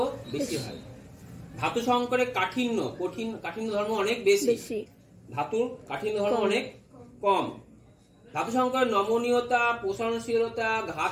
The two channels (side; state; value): both; identical; correlation 1.00